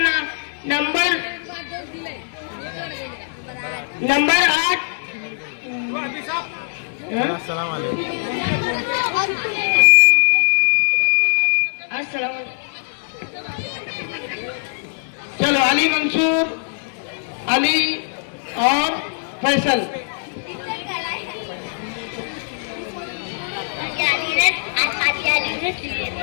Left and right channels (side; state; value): right; silent; 61 dB below the other